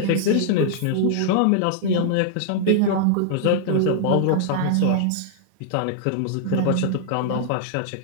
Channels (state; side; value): different; both; correlation -0.01